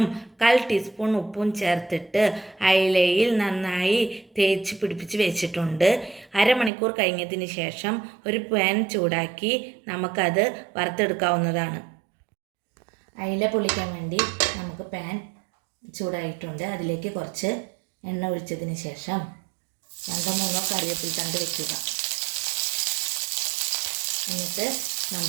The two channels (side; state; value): left; drops out; at 6.7 s